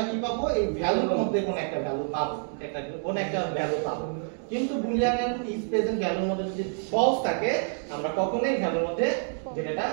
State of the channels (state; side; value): silent; left; digital silence